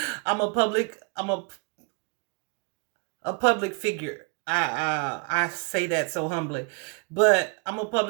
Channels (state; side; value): quieter; left; 34.6 dB